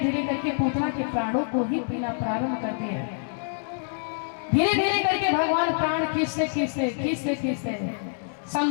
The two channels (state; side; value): silent; right; digital silence